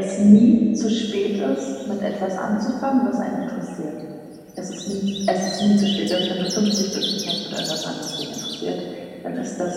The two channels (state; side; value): identical; both; correlation 1.00